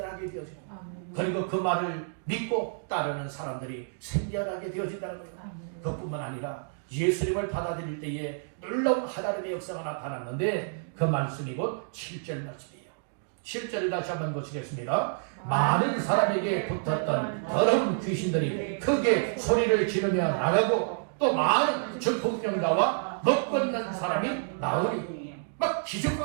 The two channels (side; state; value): left; silent; digital silence